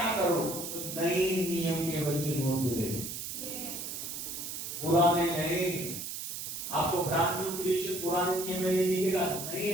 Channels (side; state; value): right; noise; hiss, 6 dB below the sound